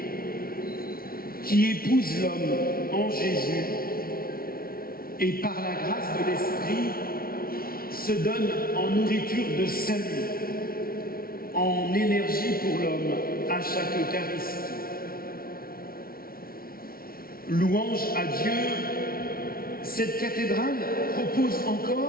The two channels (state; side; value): late; right; 0.43 ms